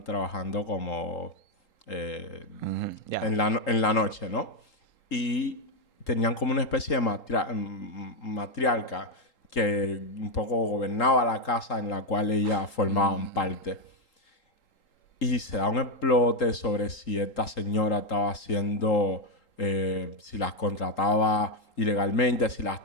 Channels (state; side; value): late; right; 3.8 ms